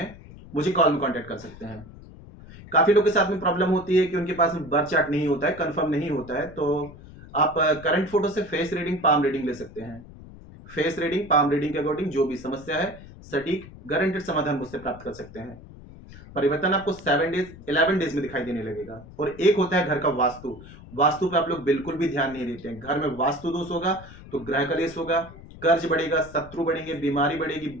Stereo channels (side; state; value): left; noise; rumble, 18 dB below the sound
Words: मुझे कॉल में कांटेक्ट कर सकते हैं। काफी लोग के साथ में प्रॉब्लम होती है कि उनके पास में बर्थ चार्ट नहीं होता है, कंफर्म नहीं होता है, तो आप करंट फोटो से फेस रीडिंग, पाम रीडिंग ले सकते हैं। फेस रीडिंग, पाम रीडिंग के अकॉर्डिंग जो भी समस्या है सटीक गारंटेड समाधान मुझसे प्राप्त कर सकते हैं। परिवर्तन आपको 7 डेज 11 डेज में दिखाई देने लगेगा। और एक होता है घर का वास्तु। वास्तु पे आप लोग बिल्कुल भी ध्यान नहीं देते हैं। घर में वास्तु दोष होगा तो ग्रह कलेश होगा, कर्ज बढ़ेगा, शत्रु बढ़ेंगे, बीमारी बढ़ेगी,